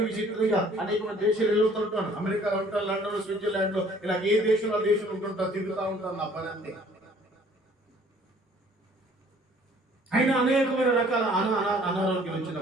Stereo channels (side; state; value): both; normal; correlation 0.56